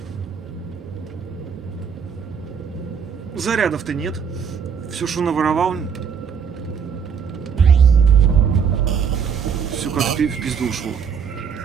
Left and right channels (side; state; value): left; quieter; 6.7 dB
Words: Зарядов-то нет. Все, что наворовал, все как в пизду ушло.